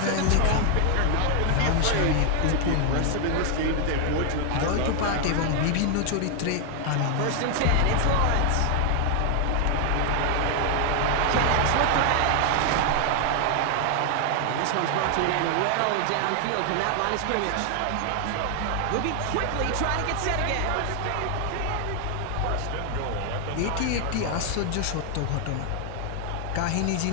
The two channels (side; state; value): both; different; correlation 0.00